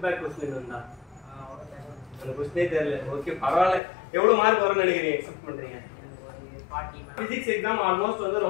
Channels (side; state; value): right; drops out; at 3.8 s